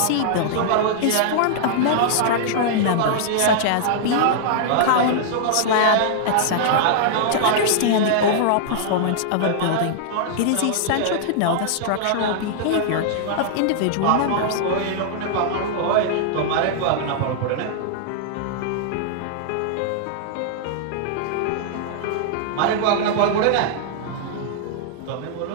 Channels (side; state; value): both; different; correlation -0.01